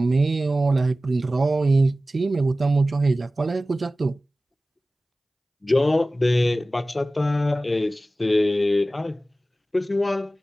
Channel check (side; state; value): both; normal; correlation 0.96